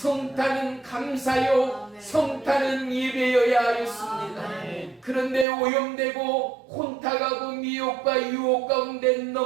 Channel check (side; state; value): left; drops out; at 5.5 s